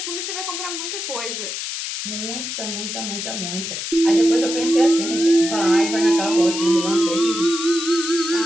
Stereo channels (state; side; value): noise; left; hiss, 5 dB below the sound